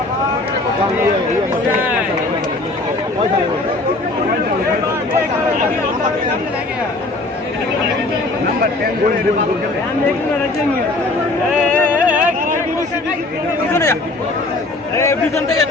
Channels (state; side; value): quieter; right; 3.0 dB